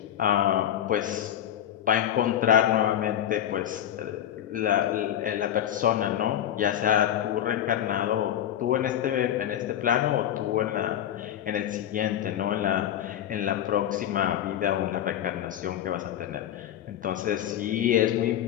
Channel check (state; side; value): quieter; right; 10.9 dB